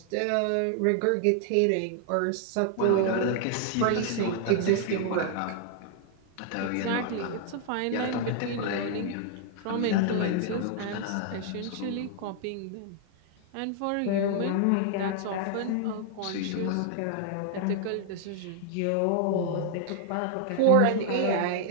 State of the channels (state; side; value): different; both; correlation 0.00